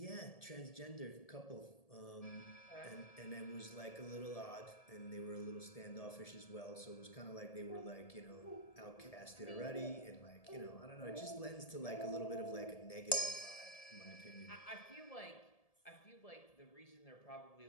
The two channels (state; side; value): late; right; 1.7 ms